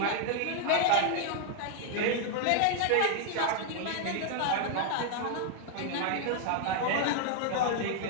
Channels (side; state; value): both; different; correlation 0.00